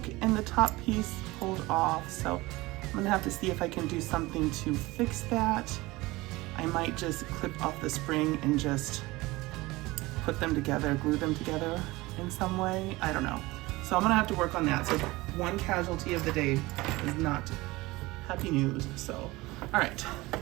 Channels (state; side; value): quieter; left; 20.8 dB